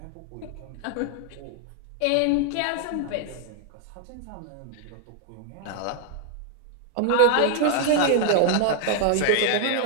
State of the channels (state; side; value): different; both; correlation 0.00